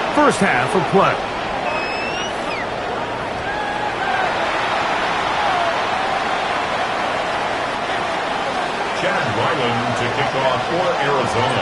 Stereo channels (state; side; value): identical; both; correlation 1.00